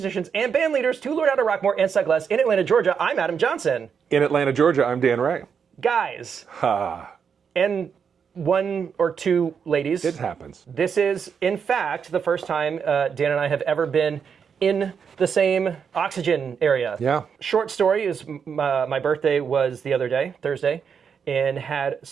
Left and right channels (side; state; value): left; quieter; 6.8 dB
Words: and band leaders to learn how to rock more and suck less. In Atlanta, Georgia, I'm Adam Johnson. In Atlanta, Georgia, I'm Dan Ray. Guys. And one or two ladies. It happens. This is, in fact, the first time Dan and I have ever been in the same oxygen area. Yeah. Short story is my birthday was the other day, Thursday, and had